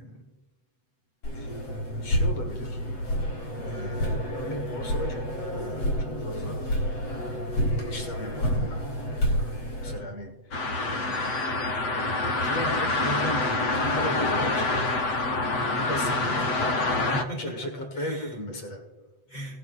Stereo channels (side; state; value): right; late; 7.9 ms